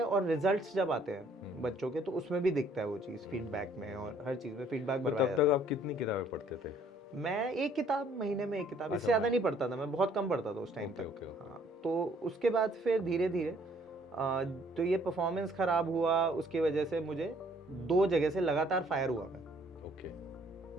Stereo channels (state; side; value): normal; both; correlation 0.61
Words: और रिजल्ट्स जब आते हैं बच्चों के तो उसमें भी दिखता है वो चीज़, फीडबैक में और हर चीज़ में फीडबैक भरवाया जाता है। तब तक आप कितनी किताबें पढ़ते थे? मैं एक किताब महीने में, एक किताब, इससे ज़्यादा नहीं पढ़ता था मैं, बहुत कम पढ़ता था उस टाइम तक। हाँ, तो उसके बाद फिर धीरे धीरे तो ये परफॉर्मेंस ख़राब हुआ, उसकी वजह से मुझे 2 जगह से लगातार फायर हुआ मैं,